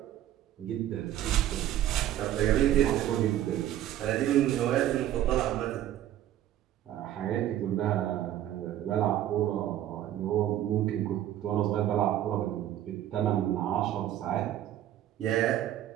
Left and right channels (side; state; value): left; quieter; 12.4 dB